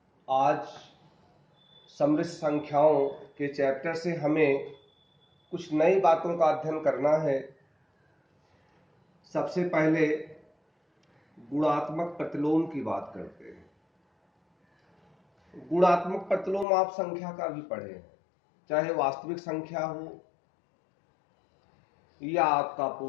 आज समृद्ध संख्याओं के चैप्टर से हमें कुछ नई बातों का अध्ययन करना है। सबसे पहले गुणात्मक प्रतिलोम की बात करते हैं। गुणात्मक प्रतिलोम आप संख्या का भी पढ़े हैं, चाहे वास्तविक संख्या हो या आपका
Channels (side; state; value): right; drops out; at 16.7 s